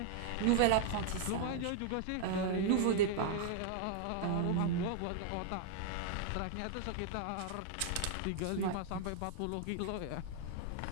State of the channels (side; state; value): both; different; correlation -0.01